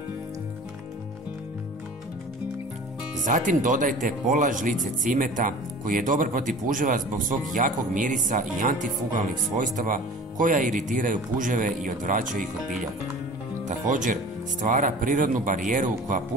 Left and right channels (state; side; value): normal; both; correlation 0.42